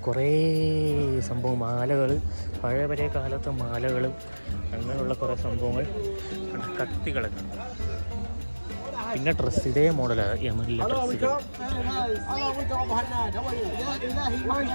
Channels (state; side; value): inverted; both; correlation -1.00